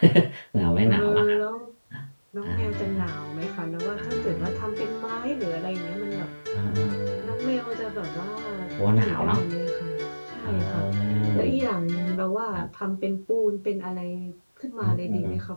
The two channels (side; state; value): both; inverted; correlation -1.00